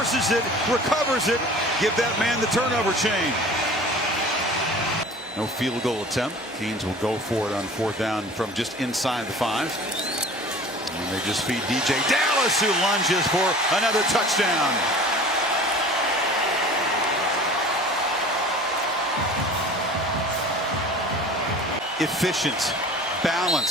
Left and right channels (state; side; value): normal; both; correlation 0.43